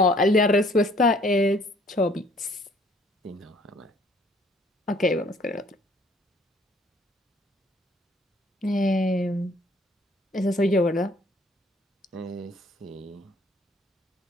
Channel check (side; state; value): both; normal; correlation 0.59